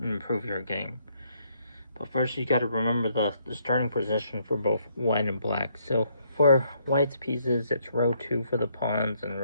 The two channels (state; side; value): inverted; both; correlation -0.71